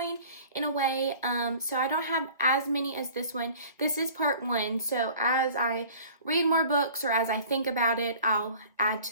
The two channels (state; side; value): inverted; both; correlation -0.47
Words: in a way, so I don't have as many as this one. This is part one, so as I read more books or as I think about it, I'll add